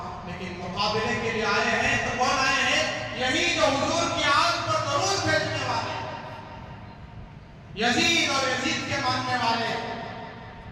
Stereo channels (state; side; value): identical; both; correlation 1.00